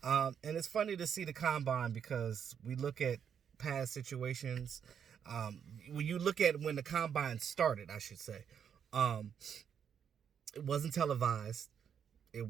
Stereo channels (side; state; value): left; quieter; 7.9 dB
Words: and it's funny to see the Combine because we look at past situations. When you look at when the Combine started, I should say, um, it wasn't televised.